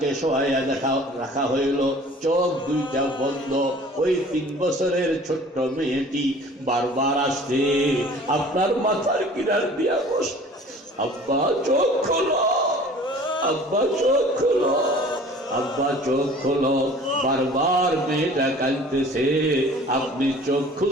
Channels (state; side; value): normal; both; correlation 0.48